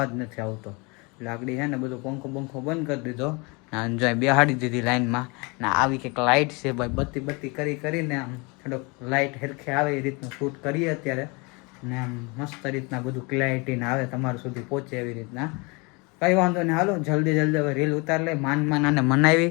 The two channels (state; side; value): quieter; right; 28.8 dB